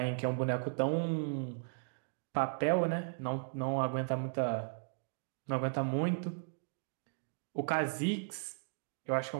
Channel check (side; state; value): left; silent; digital silence